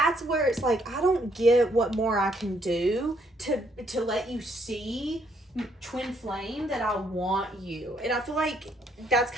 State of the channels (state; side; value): normal; both; correlation 0.70